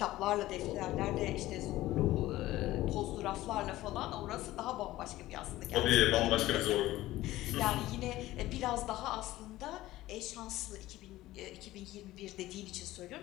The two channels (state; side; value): quieter; right; 16.4 dB